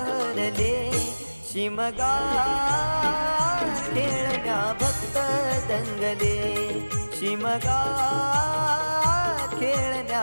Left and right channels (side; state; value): both; inverted; correlation -1.00